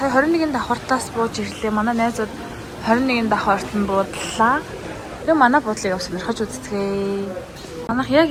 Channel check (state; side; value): identical; both; correlation 1.00